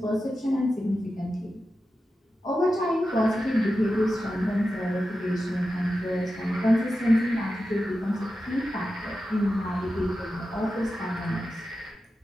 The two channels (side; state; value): both; normal; correlation 0.91